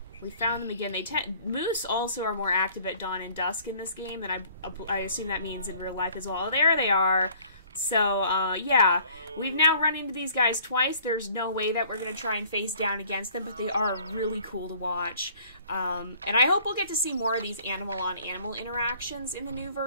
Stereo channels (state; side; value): inverted; both; correlation -0.55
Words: We found them again. Moose also are more active at dawn and dusk in this game, and I assume that means in real life as well. There they are. So, yeah. We've now run into these guys twice. There's no way that we're going to try and face down against them, but they are really cool to watch. And I hope we'll get to see more of these animal-on-animal interactions in the new